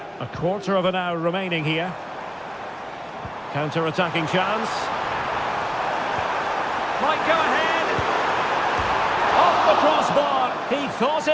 A quarter of an hour remaining here. Counter-attacking chance. Might go ahead. Off the crossbar. He thought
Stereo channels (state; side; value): identical; both; correlation 1.00